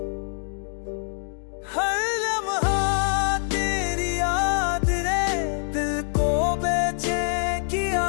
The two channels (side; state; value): right; silent; digital silence